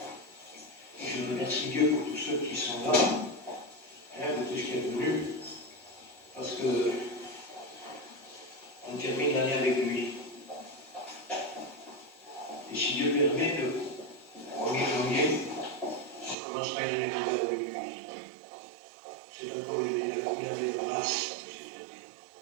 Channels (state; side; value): drops out; left; at 16.4 s